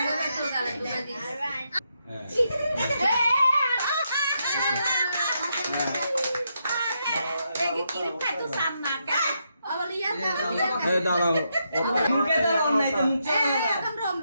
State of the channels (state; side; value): inverted; both; correlation -0.81